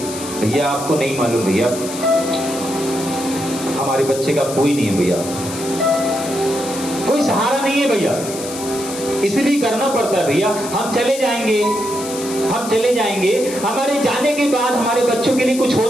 भैया आपको नहीं मालूम, भैया हमारे बच्चे का कोई नहीं है, भैया कोई सहारा नहीं है, भैया इसलिए करना पड़ता है। भैया हम चले जाएंगे, हमारे जाने के बाद हमारे बच्चों के लिए कुछ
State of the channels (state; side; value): noise; left; hiss, 10 dB below the sound